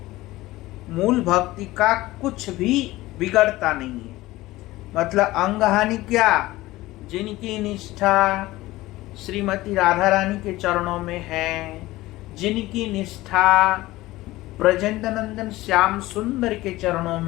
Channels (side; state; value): right; quieter; 18.0 dB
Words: मूल भक्ति का कुछ भी बिगड़ता नहीं है। मतलब अंग हानि क्या? जिनकी निष्ठा श्रीमती राधा रानी के चरणों में है, जिनकी निष्ठा ब्रजेंद्रनंदन श्याम सुंदर के चरणों